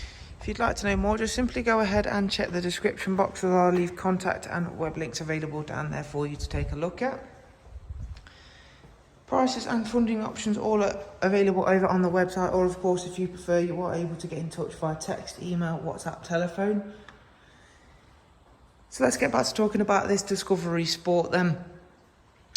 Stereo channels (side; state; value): both; identical; correlation 1.00